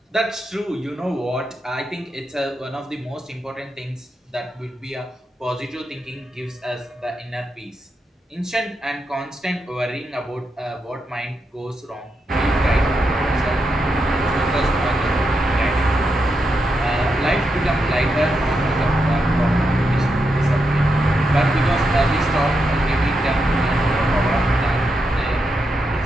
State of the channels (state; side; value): normal; both; correlation 0.84